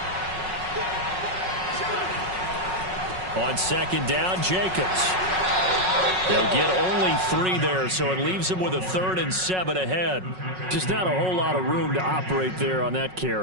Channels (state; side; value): late; left; 5.4 ms